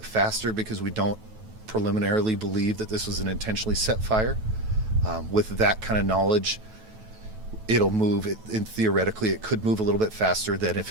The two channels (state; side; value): late; left; 9.2 ms